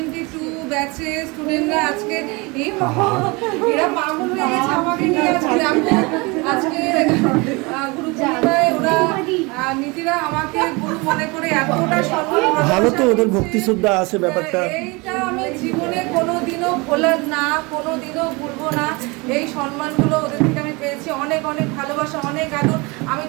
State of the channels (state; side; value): quieter; left; 26.5 dB